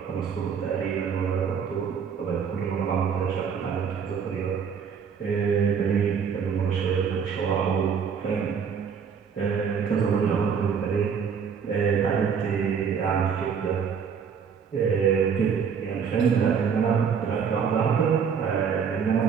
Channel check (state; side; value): quieter; left; 6.8 dB